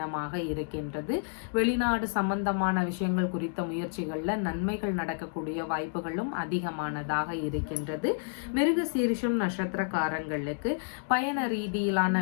இருக்கின்றது. வெளிநாடு சம்பந்தமான விஷயங்கள் குறித்த முயற்சிகள்ல நன்மைகள் நடக்கக்கூடிய வாய்ப்புகளும் அதிகமானதாக இருக்கின்றது. மிருக சீரிஷம் நட்சத்திரக்காரங்களுக்கு பயண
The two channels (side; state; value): right; silent; digital silence